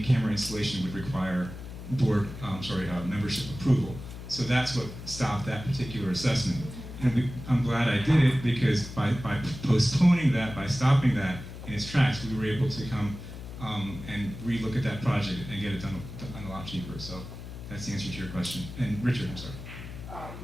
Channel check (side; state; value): left; noise; hum, 11 dB below the sound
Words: camera installation would require membership approval. So that's what stopped that particular assessment. And I'm glad I did it because by postponing that, by stopping that in its tracks, we were able to come and relook at that project and get it done a lot cheaper. So that's the answer to your question. And Richard, I'm sorry.